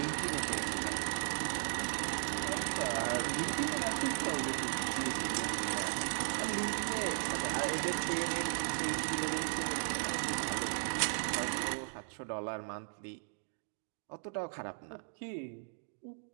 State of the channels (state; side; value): silent; left; digital silence